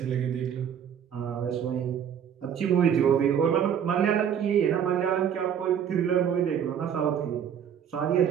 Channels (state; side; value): quieter; left; 8.5 dB